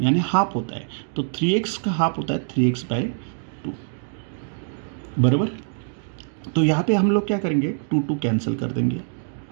यानी हाफ होता है, तो 3x का हाफ होता है 3x बाय 2 बराबर। तो यहाँ पे हम लोग क्या करेंगे, 2 कैंसिल कर देंगे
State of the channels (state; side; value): silent; left; digital silence